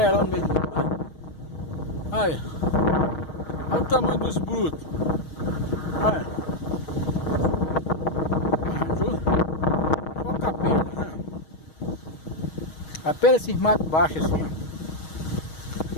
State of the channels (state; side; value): late; right; 6.4 ms